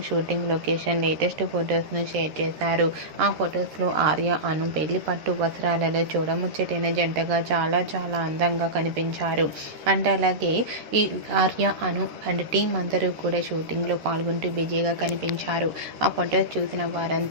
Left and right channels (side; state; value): left; late; 13 ms